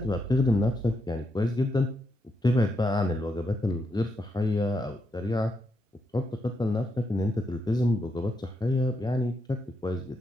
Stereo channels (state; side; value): normal; both; correlation 0.81